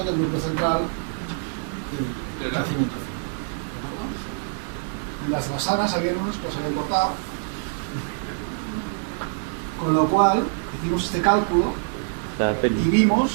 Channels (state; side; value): silent; left; digital silence